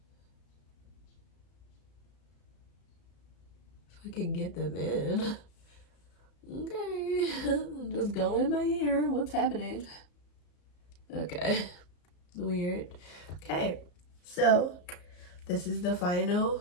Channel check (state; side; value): late; right; 34 ms